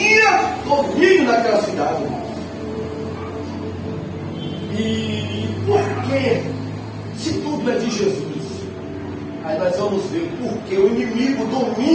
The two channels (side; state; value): both; identical; correlation 1.00